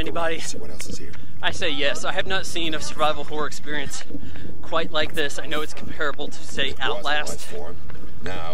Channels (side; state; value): both; identical; correlation 1.00